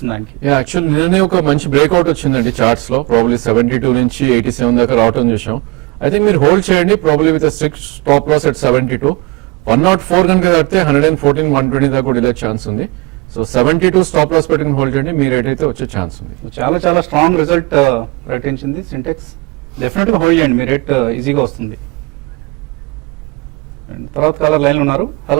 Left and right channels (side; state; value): left; quieter; 25.3 dB